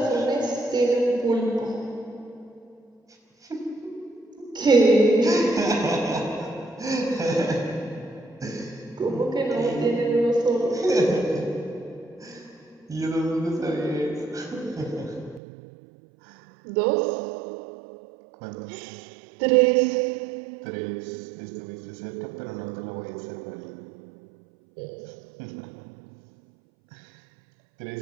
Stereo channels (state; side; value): drops out; left; at 15.4 s